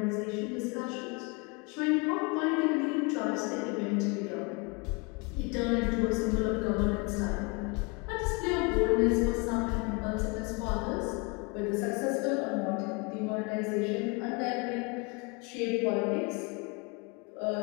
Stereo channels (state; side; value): quieter; right; 30.2 dB